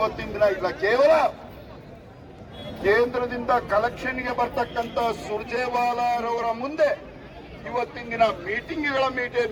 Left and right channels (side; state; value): both; identical; correlation 1.00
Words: ದಿನ ಇಲ್ಲ. ಕೇವಲ ಕೇಂದ್ರದಿಂದ ಕಲೆಕ್ಷನ್ಗೆ ಬರ್ತಕ್ಕಂಥ ಸುರ್ಜೇವಾಲಾರವರ ಮುಂದೆ ಇವತ್ತಿನ ದಿನ